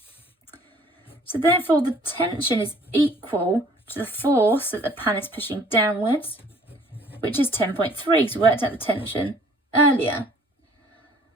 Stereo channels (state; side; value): normal; both; correlation 0.56